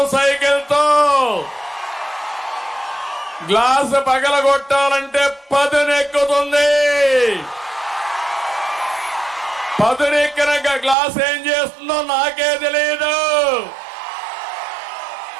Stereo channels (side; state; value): left; drops out; at 11.0 s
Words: సైకిల్తో. గ్లాసు పగలగొట్టాలంటే పదునెక్కుతుంది. పదునెక్కిన గ్లాస్ ఏం చేస్తుందో నాకే తెలియదు.